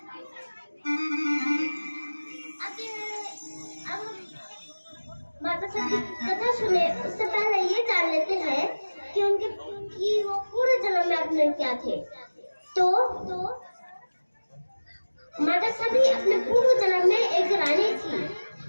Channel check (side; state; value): both; inverted; correlation -1.00